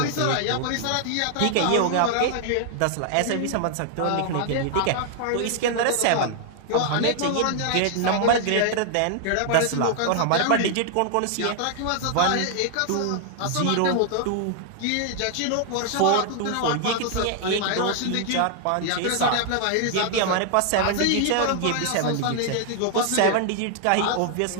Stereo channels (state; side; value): different; both; correlation 0.00